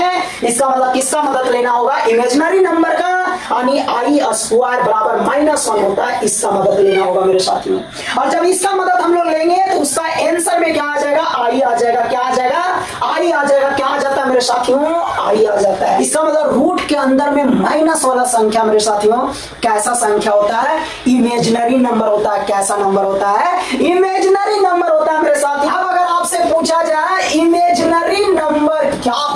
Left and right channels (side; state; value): both; identical; correlation 1.00